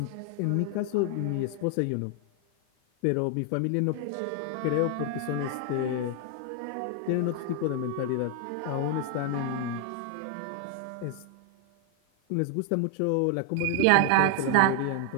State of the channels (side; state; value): both; different; correlation 0.00